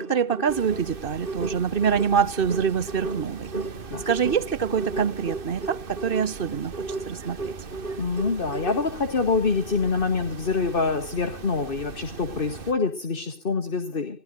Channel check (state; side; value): late; right; 2.6 ms